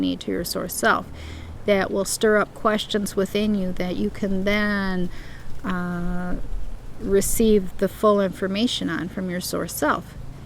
to your source self. That will stir up questions within you that you can then receive the full information on from your source self.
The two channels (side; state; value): both; identical; correlation 1.00